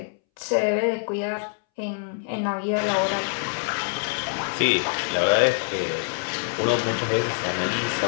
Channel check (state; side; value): silent; right; 62 dB below the other